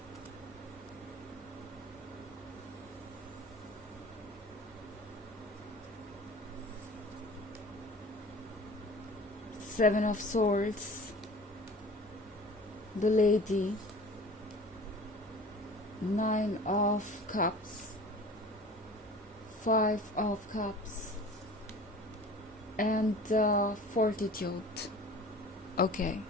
7 of Swords, the Lady, 9 of Cups, 5 of Cups, and Fortitude. Okay.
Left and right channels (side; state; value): both; normal; correlation 0.42